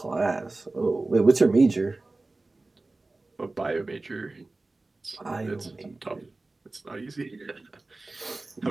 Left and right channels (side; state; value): left; quieter; 3.2 dB